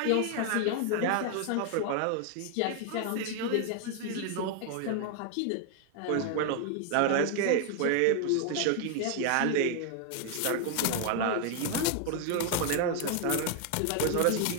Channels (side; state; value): both; different; correlation 0.00